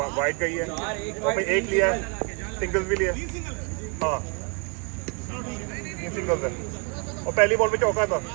वाइड का ही है और फिर एक लिया है, सिंगल्स भी लिया। हाँ ये सिंगल्स है और पहली बॉल पे चौका था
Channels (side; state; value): left; quieter; 34.6 dB